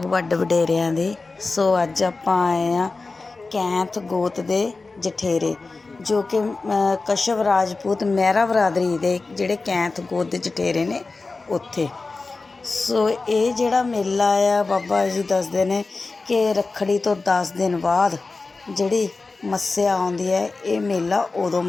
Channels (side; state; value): right; quieter; 3.8 dB